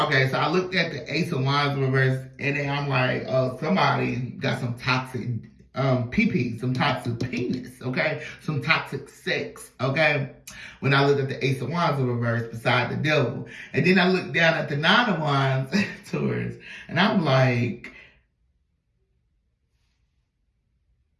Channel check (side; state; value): both; identical; correlation 1.00